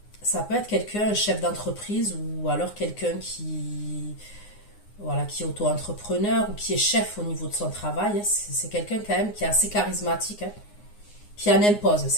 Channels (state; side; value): late; right; 9.6 ms